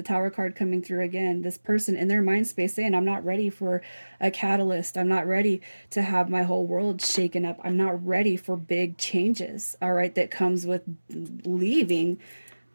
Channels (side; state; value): both; inverted; correlation -1.00